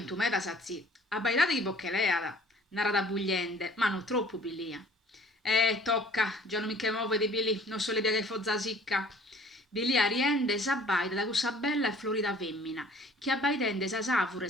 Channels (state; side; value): normal; both; correlation 0.52